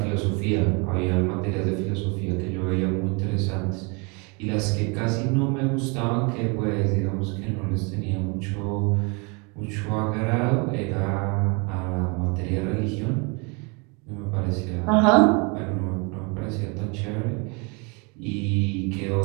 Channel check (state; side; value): quieter; left; 31.4 dB